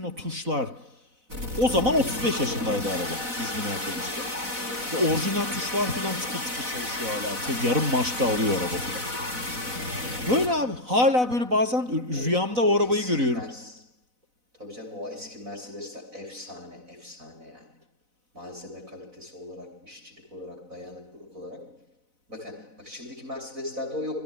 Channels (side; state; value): left; late; 4.0 ms